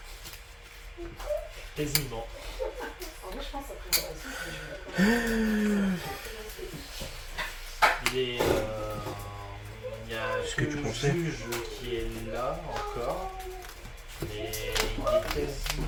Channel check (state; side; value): identical; both; correlation 1.00